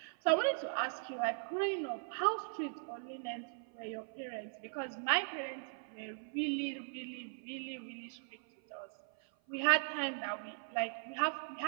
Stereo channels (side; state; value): left; silent; 52 dB below the other